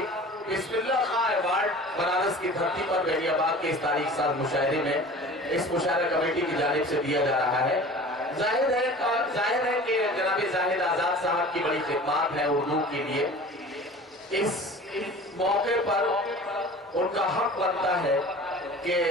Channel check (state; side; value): normal; both; correlation 0.41